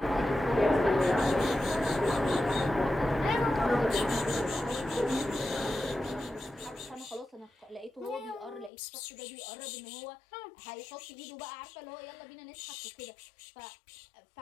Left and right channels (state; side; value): drops out; right; at 8.7 s